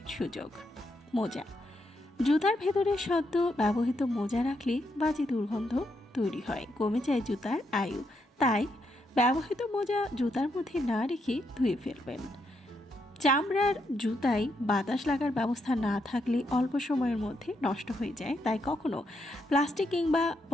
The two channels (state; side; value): normal; both; correlation 0.79